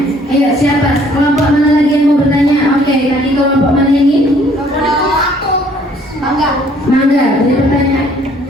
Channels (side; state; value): both; normal; correlation 0.60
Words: Ayo siapa? Kelompok mana lagi yang mau bertanya? Oke, tadi kelompok mana ini? Mangga, beri pertanyaan.